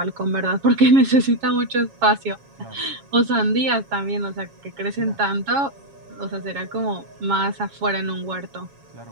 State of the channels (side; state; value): left; late; 7.3 ms